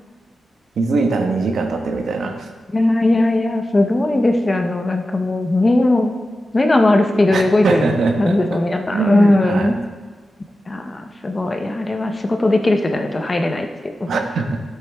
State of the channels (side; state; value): both; normal; correlation 0.92